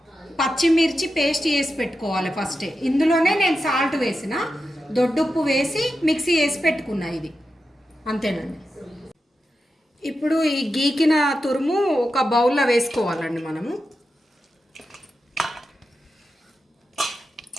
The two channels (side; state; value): both; normal; correlation 0.90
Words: పచ్చిమిర్చి పేస్ట్ చేసి పెట్టుకోవాలి ఫస్టే. ఇందులోనే నేను సాల్ట్ వేసిన, దొడ్డుప్పు వేసి మిక్సీ వేసి పెట్టుకున్నా. ఇది అంతేనండి. ఇప్పుడు ఈ గీకిన తురుము ఒక బౌల్లో వేసుకోవాలండి. మనము